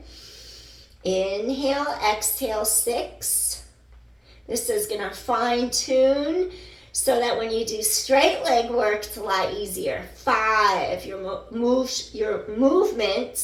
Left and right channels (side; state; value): both; identical; correlation 1.00